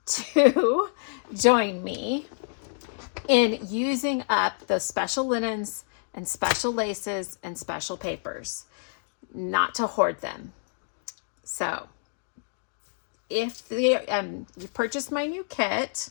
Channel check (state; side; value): silent; right; digital silence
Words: to join me in using up those special linens and special laces and special papers, not to hoard them. So if you purchased my new kit,